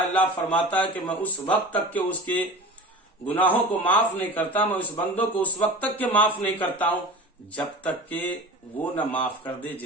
اللہ فرماتا ہے کہ میں اس وقت تک کہ اس کے گناہوں کو معاف نہیں کرتا، میں اس بندوں کو اس وقت تک کہ معاف نہیں کرتا ہوں جب تک کہ وہ نہ معاف کر دے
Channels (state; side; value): normal; both; correlation 0.35